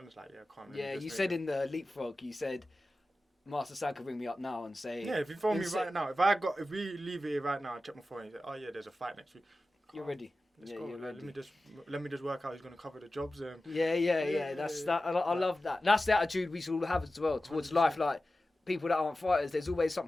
just like can't. Yeah, you said in the leapfrog, you said Master Sam could ring me up now and say. Yeah, if you phone me right now, if we leave it right now, I check my phone. You say, oh yeah, there's a fight next week. You're ready. Let's go. You're ready. Let me just work out who's gonna cover the jobs. Yeah. That's that. I love that. That's the attitude we should all have as well towards 100%. Life. Like people that aren't fighters, there's always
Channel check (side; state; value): both; normal; correlation 0.94